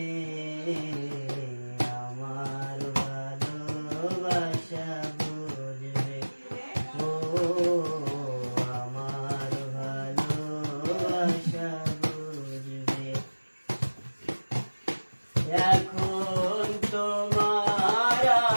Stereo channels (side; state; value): both; inverted; correlation -1.00